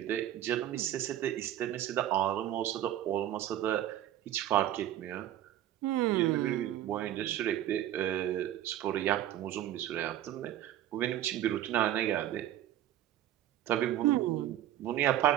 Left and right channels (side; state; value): left; quieter; 12.2 dB